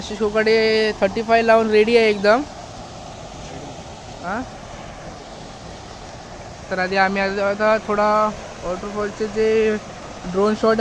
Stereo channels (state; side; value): identical; both; correlation 1.00